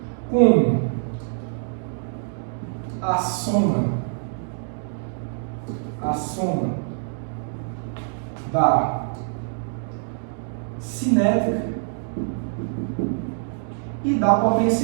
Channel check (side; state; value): left; silent; digital silence